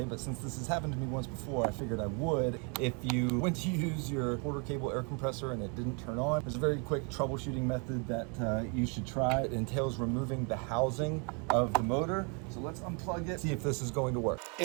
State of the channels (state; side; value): quieter; left; 35.2 dB